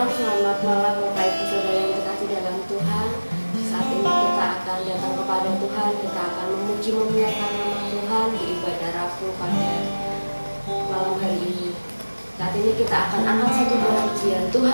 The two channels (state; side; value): inverted; both; correlation -1.00